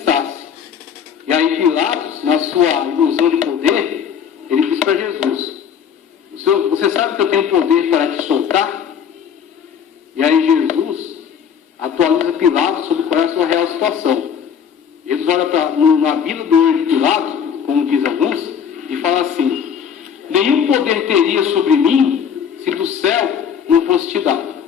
E aí Pilatos, na sua ilusão de poder, ele disse para Jesus, você sabe que eu tenho poder para te soltar? E aí Jesus atualiza Pilatos sobre qual é a sua real situação. Jesus olha na Bíblia do olho de Pilatos, como diz alguns, e fala assim, nenhum poder teria sobre mim se do céu não fosse te dado.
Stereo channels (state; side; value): quieter; right; 7.8 dB